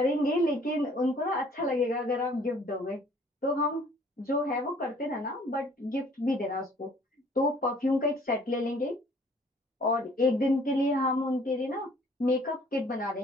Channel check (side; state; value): both; normal; correlation 0.57